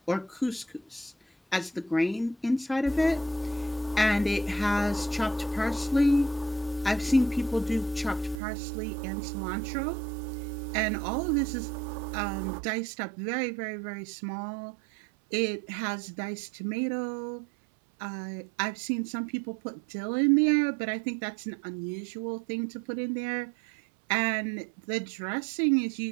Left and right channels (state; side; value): drops out; left; at 8.4 s